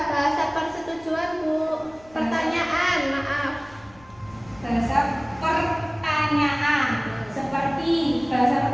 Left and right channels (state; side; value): noise; left; rumble, 25 dB below the sound